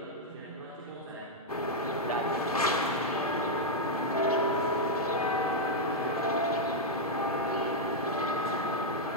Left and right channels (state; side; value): normal; both; correlation -0.02